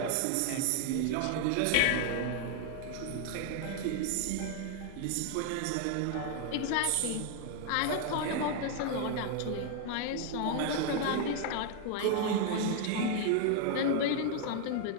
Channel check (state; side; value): different; both; correlation 0.00